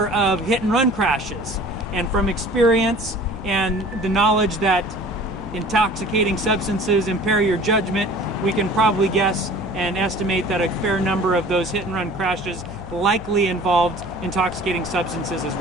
of hit and run crashes, and from experience and the knowledge that intoxicating substances impair your judgment, we can probably guess and estimate that a fair number of those hit and run crashes likely involved intoxicating substances as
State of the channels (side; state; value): left; noise; hum, 16 dB below the sound